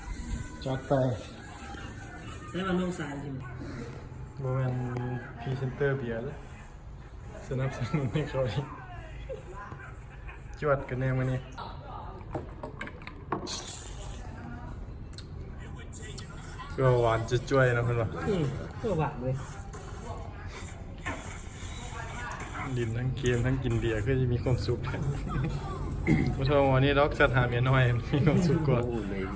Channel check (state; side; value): identical; both; correlation 1.00